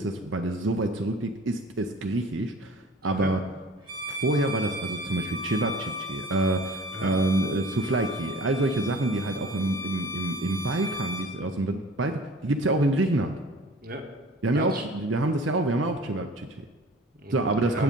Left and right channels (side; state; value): both; normal; correlation 0.45